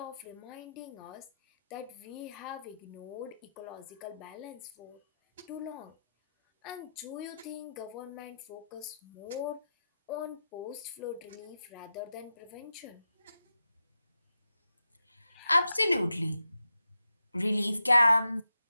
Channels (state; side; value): inverted; both; correlation -0.87